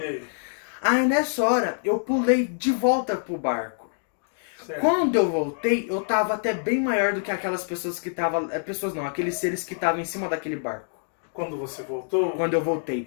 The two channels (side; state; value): right; silent; digital silence